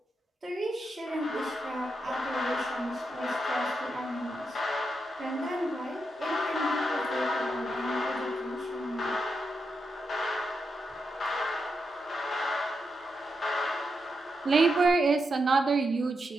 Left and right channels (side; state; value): both; normal; correlation 0.85